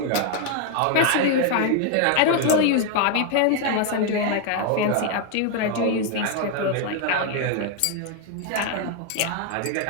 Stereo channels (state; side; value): different; both; correlation 0.01